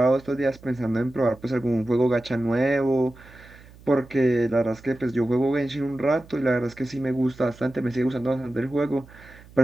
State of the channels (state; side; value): noise; right; hum, 22 dB below the sound